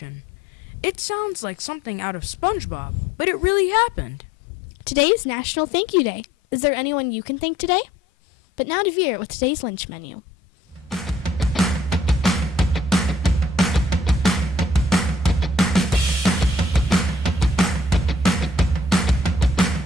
It sounds like something out of SpongeBob, but it really happened. Today is National Thank You Day. Is there anyone you can thank today? But now to Vera with today's lunch menu.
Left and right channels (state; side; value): normal; both; correlation 0.60